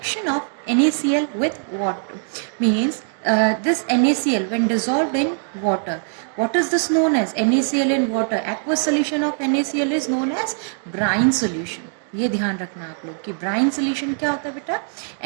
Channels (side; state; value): left; silent; digital silence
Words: of NaCl with water. Means this NaCl when dissolved in water. What is this known as? NaCl in water. Aqueous solution of NaCl is known as brine solution. ये ध्यान रखना आप लोग कि brine solution क्या होता है बेटा?